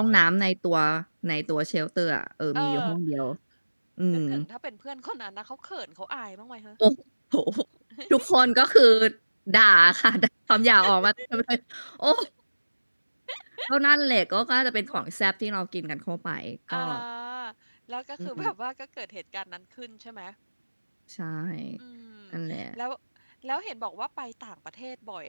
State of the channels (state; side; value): inverted; both; correlation -1.00